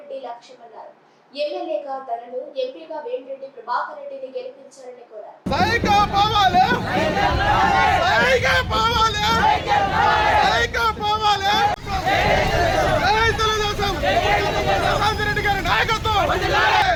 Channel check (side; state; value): both; identical; correlation 1.00